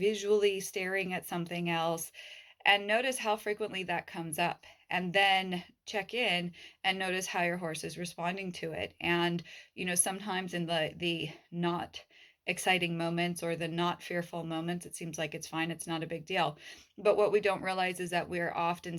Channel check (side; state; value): both; identical; correlation 1.00